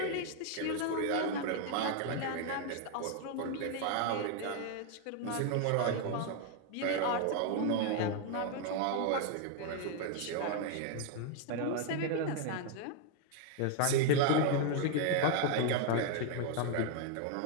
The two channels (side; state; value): both; different; correlation 0.00